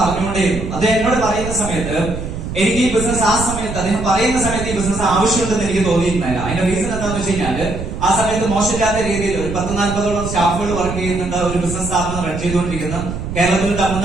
പറഞ്ഞുകൊണ്ടേയിരുന്നു. അദ്ദേഹം എന്നോട് പറയുന്ന സമയത്ത് എനിക്ക് ഈ ബിസിനസ് ആ സമയത്ത് അദ്ദേഹം പറയുന്ന സമയത്ത് ഈ ബിസിനസ് ആവശ്യമുണ്ടെന്ന് എനിക്ക് തോന്നിയിരുന്നില്ല. അതിന്റെ റീസൺ എന്താണെന്ന് വെച്ച് കഴിഞ്ഞാല് ആ സമയത്ത് മോശമില്ലാത്ത രീതിയിൽ ഒരു 10-40ഓളം സ്റ്റാഫുകൾ വർക്ക് ചെയ്യുന്നുണ്ട്. ഒരു ബിസിനസ് സ്ഥാപനം റൺ ചെയ്തുകൊണ്ടിരിക്കുന്ന കേരളത്തിൽ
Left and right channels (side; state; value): right; noise; rumble, 7 dB below the sound